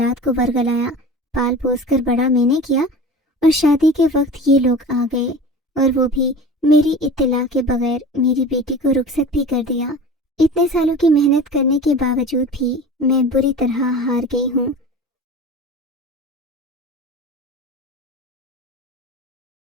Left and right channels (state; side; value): normal; both; correlation 0.36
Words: کو ورگلایا، پال پوس کر بڑا میں نے کیا، اور شادی کے وقت یہ لوگ آ گئے اور وہ بھی میری اطلاع کے بغیر میری بیٹی کو رخصت بھی کر دیا۔ اتنے سالوں کی محنت کرنے کے باوجود بھی میں بری طرح ہار گئی ہوں۔